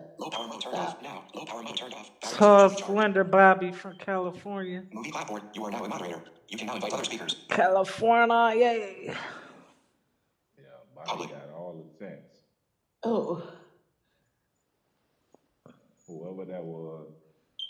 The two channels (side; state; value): both; identical; correlation 1.00